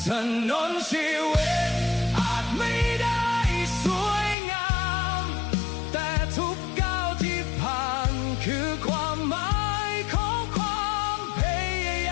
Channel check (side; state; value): right; drops out; at 4.4 s